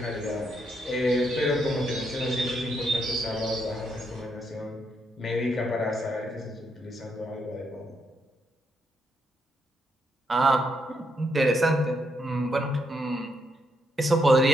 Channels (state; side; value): normal; both; correlation 0.77